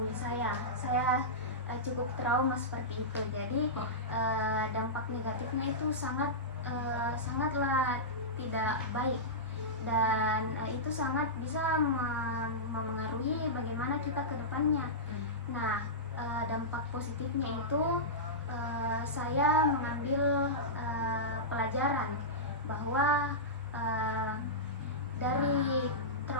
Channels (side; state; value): both; normal; correlation -0.15